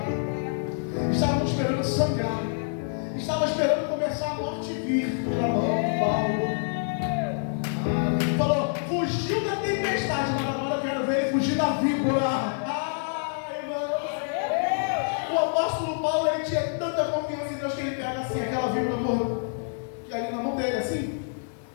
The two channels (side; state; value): right; silent; 60 dB below the other